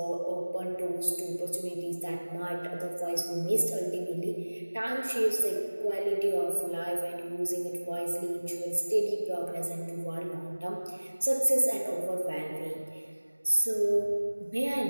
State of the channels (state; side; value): inverted; both; correlation -1.00